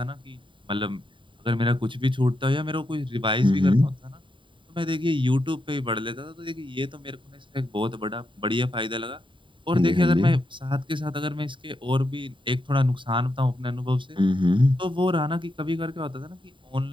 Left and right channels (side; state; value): left; late; 0.24 ms